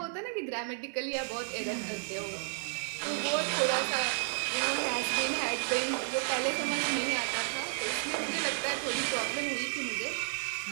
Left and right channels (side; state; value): left; silent; digital silence